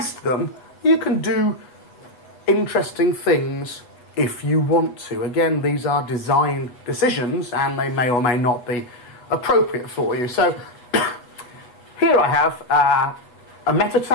them. You can do interesting things if you want to. Again, these are design decisions, and they may or may not be appropriate for you. So here I have a meta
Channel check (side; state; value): right; late; 8.2 ms